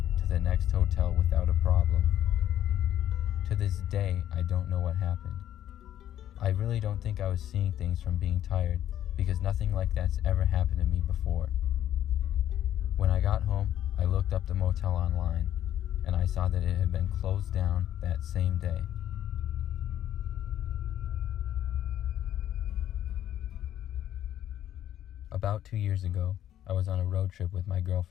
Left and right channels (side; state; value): right; quieter; 11.5 dB